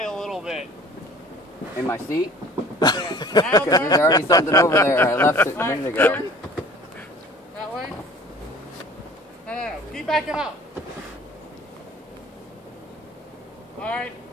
a little bit. In my seat? Yeah. Now Because there's already something over there. I left it a Alright, minute ago. turn. That way. No. Keep backing up. Alright.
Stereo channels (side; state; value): both; normal; correlation 0.48